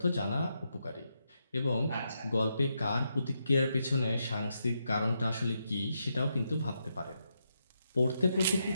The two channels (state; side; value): inverted; both; correlation -0.82